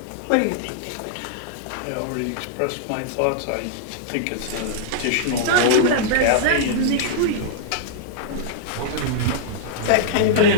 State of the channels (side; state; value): both; different; correlation -0.02